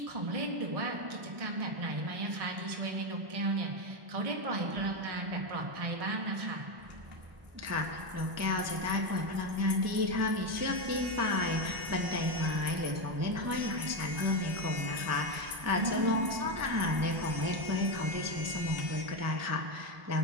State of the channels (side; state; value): left; late; 1.1 ms